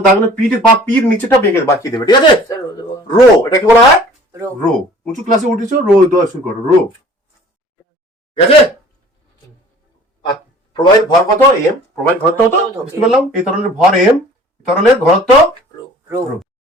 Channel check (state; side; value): normal; both; correlation 0.49